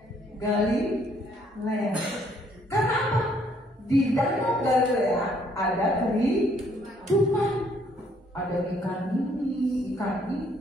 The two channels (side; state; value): both; normal; correlation 0.66